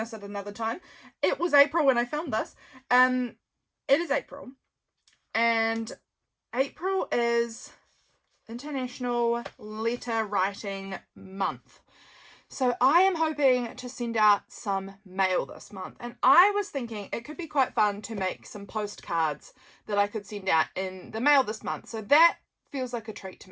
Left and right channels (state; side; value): identical; both; correlation 1.00